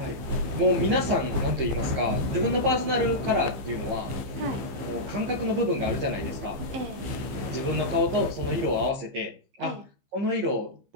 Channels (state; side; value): late; left; 15 ms